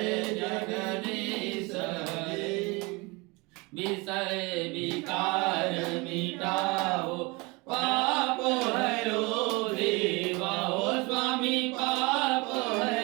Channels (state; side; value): quieter; left; 26.3 dB